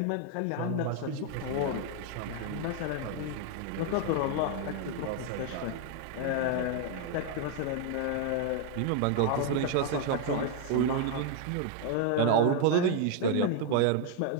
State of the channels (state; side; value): different; both; correlation 0.00